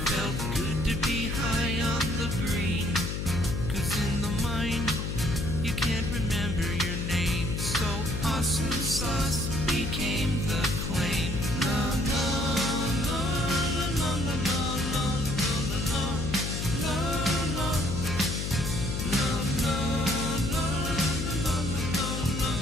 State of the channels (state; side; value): noise; left; hum, 3 dB below the sound